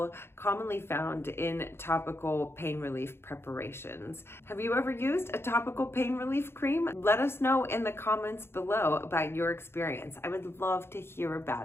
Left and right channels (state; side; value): late; right; 0.12 ms